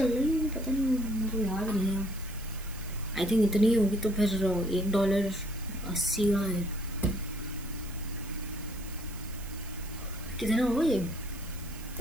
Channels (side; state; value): right; noise; hiss, 17 dB below the sound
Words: रही है, पता नहीं मुझे याद नहीं है। आई थिंक इतनी होगी तो फिर $1 80 का है। कितना हो ये